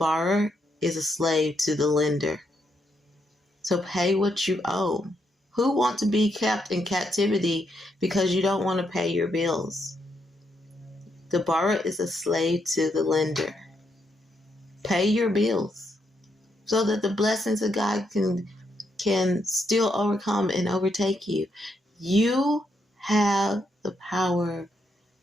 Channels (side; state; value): both; normal; correlation 0.79